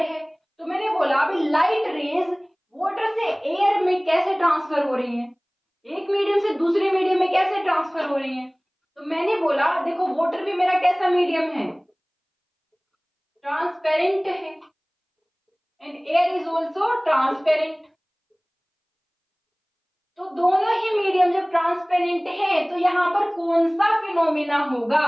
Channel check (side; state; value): both; identical; correlation 1.00